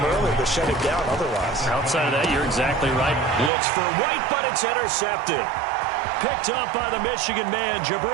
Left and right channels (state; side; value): drops out; left; at 3.5 s